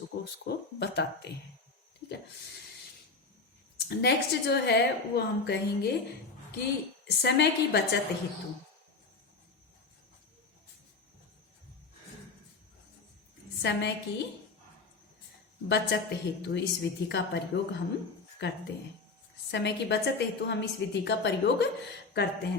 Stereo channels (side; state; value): right; quieter; 4.1 dB